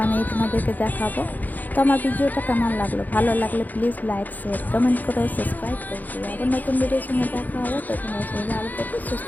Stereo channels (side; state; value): right; late; 0.083 ms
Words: তোমাদেরকে দেখাবো। তো আমার ভিডিওটা কেমন লাগলো, ভালো লাগলে প্লিজ লাইক, শেয়ার, কমেন্ট করো, সাবস্ক্রাইব করে দিও। আবার নতুন ভিডিওর সঙ্গে দেখা হবে। তো তোমার সঙ্গে ভালো থেকো, সুস্থ